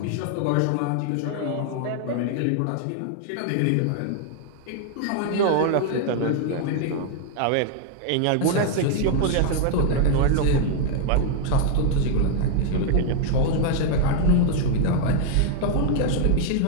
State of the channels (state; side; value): different; both; correlation 0.00